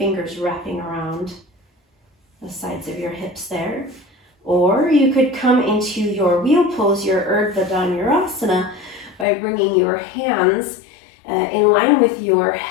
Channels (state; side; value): drops out; right; at 9.2 s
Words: wrapping around the sides of your hips there. Or you could come into your wheel pose, your Urdhva Dhanurasana, by bringing your hands in line with your